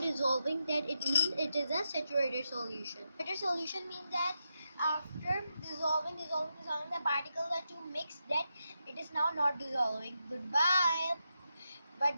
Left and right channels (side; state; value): both; inverted; correlation -0.86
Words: That it means it is a saturated solution. Saturated solution means that after dissolving, the particles are too mixed. That it is now not dissolving. Goodbye.